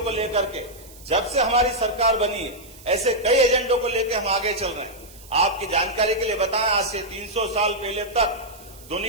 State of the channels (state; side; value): noise; right; hiss, 21 dB below the sound